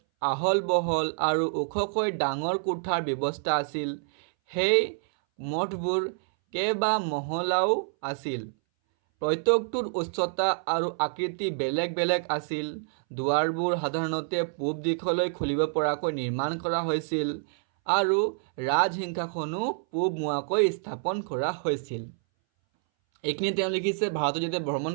আহল বহল আৰু ওখকৈ ডাঙৰ কোঠাৰ ব্যৱস্থা আছিল। সেই মঠবোৰ কেইবা মহলাও আছিল। প্ৰত্যেকটোৰ উচ্চতা আৰু আকৃতি বেলেগ বেলেগ আছিল। দুৱাৰবোৰ সাধাৰণতে পূব দিশলৈ খুলিব পৰাকৈ নিৰ্মাণ কৰা হৈছিল আৰু ৰাজসিংহাসনো পূব মুৱাকৈ স্থাপন কৰা হৈছিল। এইখিনি তেওঁ লিখিছে। ভাৰতত যেতিয়া ভ্ৰমণ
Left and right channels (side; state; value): left; silent; 60 dB below the other